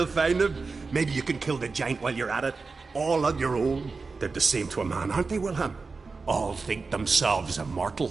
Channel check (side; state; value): left; quieter; 4.3 dB